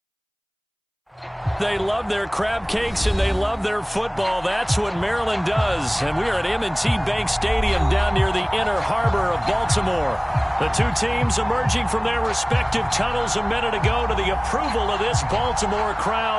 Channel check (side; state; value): both; identical; correlation 1.00